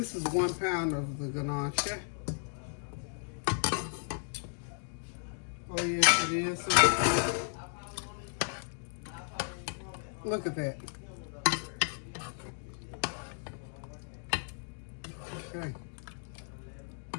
is 1 pound of the gnocchi. Oh yes, it is. Look at that. Okay.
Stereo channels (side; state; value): right; silent; 55 dB below the other